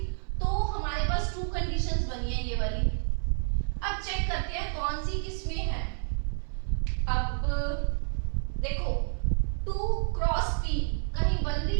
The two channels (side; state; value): left; silent; 58 dB below the other